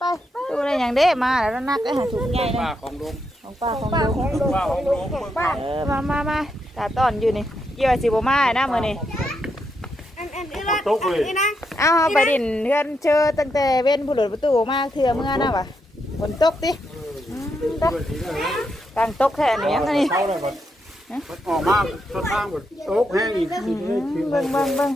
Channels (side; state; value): both; normal; correlation 0.81